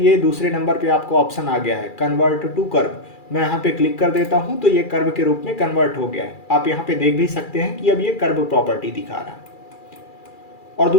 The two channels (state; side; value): late; right; 2.4 ms